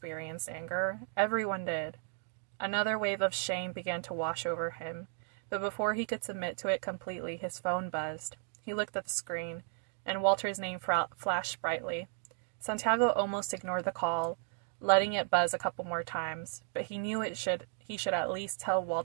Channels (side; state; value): left; silent; 55 dB below the other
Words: anger. Everyone did. Another wave of shame began to wash over him, but before he could submit to it completely, his phone buzzed. He looked at the screen, and Walter's name flashed brightly. Santiago almost ignored the call, letting it buzz a couple more times, but he knew he should at least tell